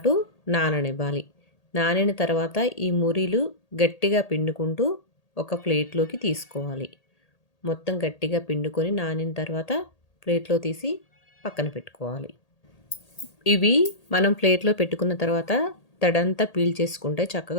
నాననివ్వాలి. నానిన తర్వాత ఈ మురీలు గట్టిగా పిండుకుంటూ ఒక ప్లేట్లోకి తీసుకోవాలి. మొత్తం గట్టిగా పిండుకొని నానిన తర్వాత ప్లేట్లో తీసి పక్కన పెట్టుకోవాలి. ఇవి మనం ప్లేట్లో పెట్టుకున్న తర్వాత తడంతా పీల్చేసుకుంటే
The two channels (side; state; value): right; late; 1.8 ms